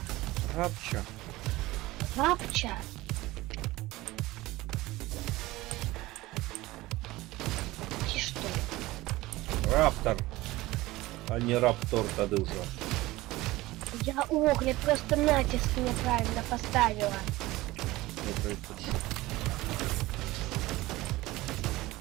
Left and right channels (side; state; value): left; quieter; 18.8 dB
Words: Рапча. Рапча. Ти что? Раптор, а не раптор тады ўжо. Я огляд просто натиск неправильно поставила. Добрый путь.